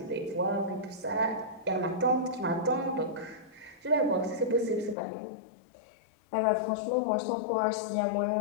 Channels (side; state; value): right; drops out; at 5.0 s